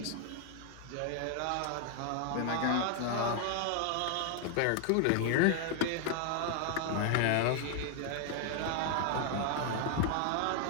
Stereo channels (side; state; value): both; different; correlation 0.00